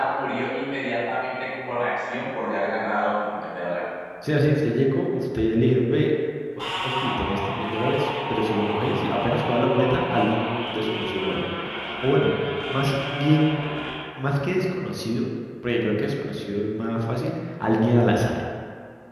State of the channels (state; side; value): identical; both; correlation 1.00